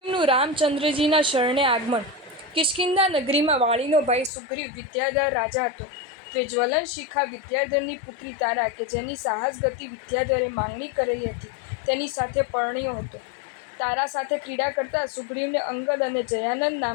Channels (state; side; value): drops out; right; at 4.3 s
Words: શ્રીગુરુ રામચંદ્રજીના શરણે આગમન। કિષ્કિંધા નગરીમાં વાળીનો ભાઈ સુગ્રીવ વિદ્યાધર રાજા હતો। તે જ્વલન શિખા વિદ્યાધરની પુત્રી તારા કે જેની સાહસ ગતિ વિદ્યાધરે માંગણી કરેલી હતી તેની સાથે પરણ્યો હતો। તારા સાથે ક્રીડા કરતા સુગ્રીવને અંગદ અને જયાનંદ